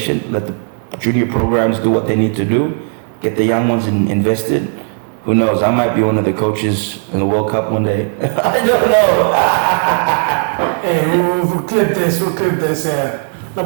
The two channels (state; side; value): silent; left; 56 dB below the other